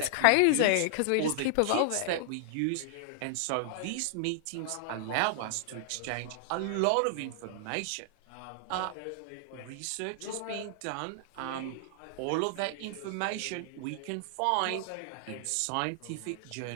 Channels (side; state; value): both; different; correlation -0.01